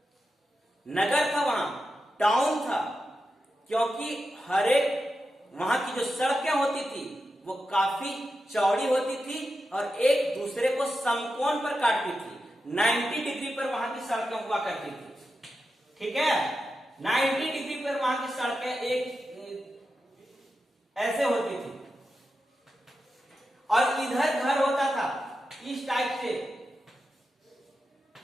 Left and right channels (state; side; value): normal; both; correlation 0.89